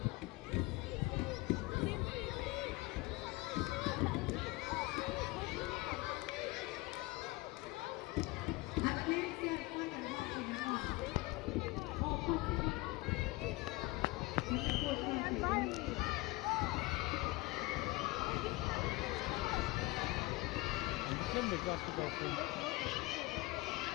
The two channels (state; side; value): quieter; right; 21.7 dB